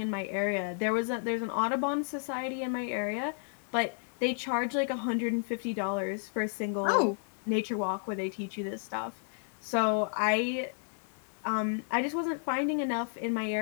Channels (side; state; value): right; silent; 56 dB below the other